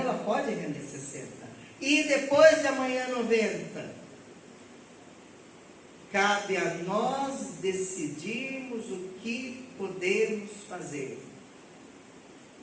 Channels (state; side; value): identical; both; correlation 1.00